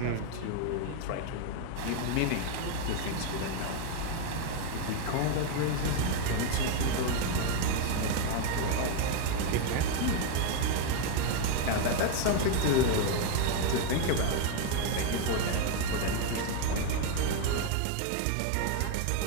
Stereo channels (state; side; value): different; both; correlation 0.01